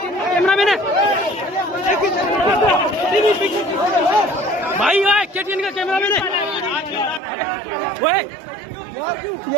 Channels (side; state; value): left; drops out; at 7.2 s